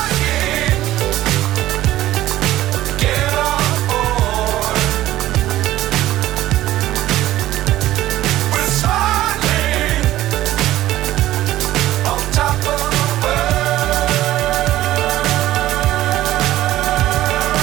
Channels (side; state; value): left; quieter; 14.7 dB